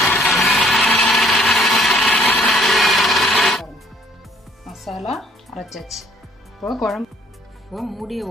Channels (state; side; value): normal; both; correlation 0.61